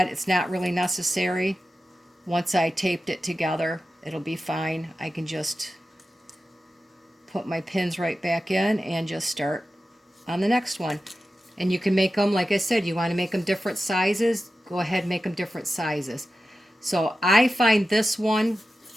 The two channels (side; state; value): both; normal; correlation 0.93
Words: It's not really necessary. Once I taped it together, it'll be fine. I can just put my pins right back in and just start on the next one. And you can make them, like I said, you want to make them different sizes, go ahead and make them different sizes. So I find this one,